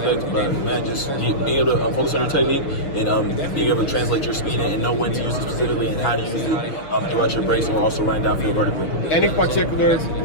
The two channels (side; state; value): right; late; 6.8 ms